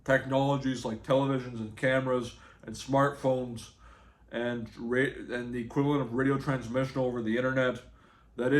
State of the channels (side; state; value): both; identical; correlation 1.00